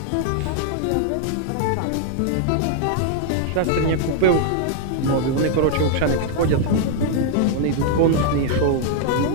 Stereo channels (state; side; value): different; both; correlation -0.01